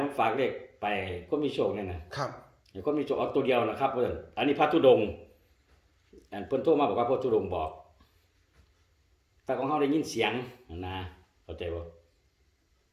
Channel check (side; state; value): both; identical; correlation 1.00